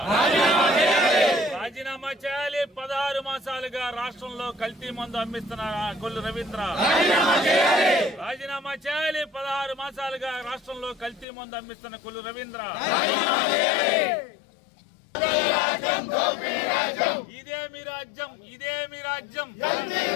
రాజీనామా చేయాలి. 16 మాసాలుగా రాష్ట్రంలో కల్తీ మందు అమ్మిస్తున్న కొల్లు రవీంద్ర రాజీనామా చేయాలి. 16 మాసాలుగా రాష్ట్రంలో కల్తీ మందు అమ్మిస్తున్న కొల్లు రవీంద్ర ఇదే మీ రాజ్యం ఇదే మీ రాజ్యం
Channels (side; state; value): right; drops out; at 11.2 s